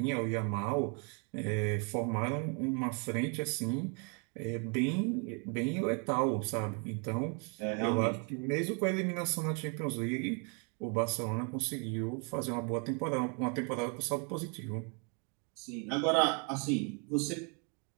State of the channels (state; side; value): quieter; left; 36.6 dB